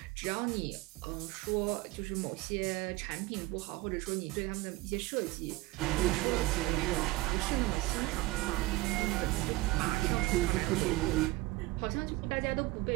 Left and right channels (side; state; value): left; quieter; 20.3 dB